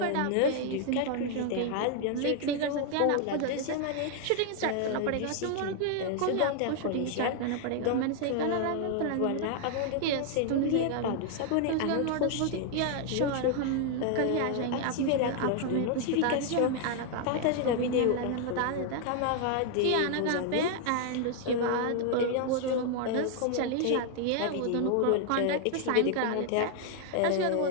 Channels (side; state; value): both; different; correlation 0.00